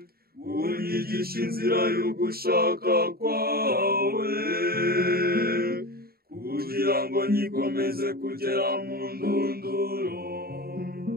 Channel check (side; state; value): left; late; 0.44 ms